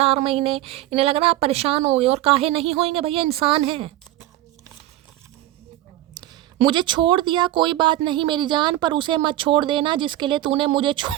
महीने, इन्हें लग रहा आप परेशान हो गए। और काहे नहीं होंगे भैया, इंसान है। मुझे छोड़ दिया कोई बात नहीं मेरी जान, पर उसे मत छोड़ देना जिसके लिए तूने मुझे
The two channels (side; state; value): left; quieter; 14.7 dB